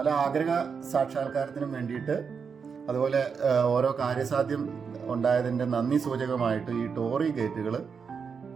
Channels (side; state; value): left; quieter; 6.0 dB